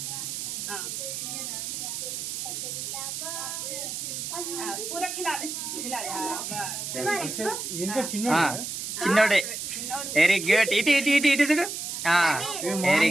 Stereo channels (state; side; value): noise; right; hiss, 5 dB below the sound